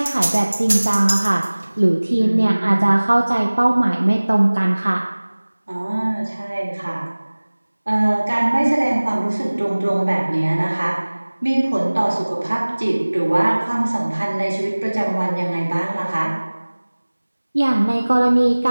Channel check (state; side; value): inverted; both; correlation -1.00